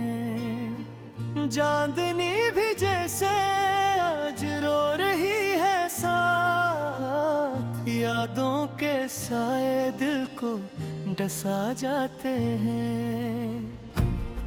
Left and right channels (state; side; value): identical; both; correlation 1.00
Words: चांदनी भी जैसे आज रो रही है साथ, यादों के साए दिल को डसा जाते हैं।